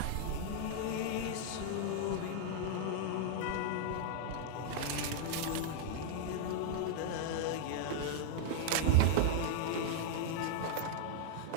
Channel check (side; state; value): both; different; correlation -0.01